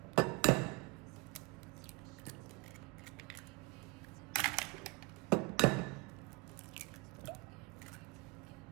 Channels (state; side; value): quieter; left; 26.1 dB